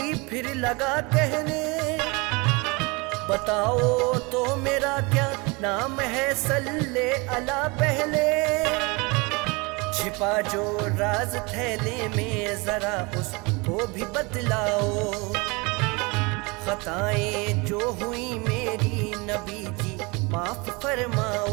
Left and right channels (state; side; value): quieter; left; 27.2 dB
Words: फिर लगा कहने। बताओ तो मेरा क्या नाम है, सल्ले अला पहले। छिपा जो राज थैले में जरा उसको भी बतलाओ। खताएं जो हुई मेरी नबी जी माफ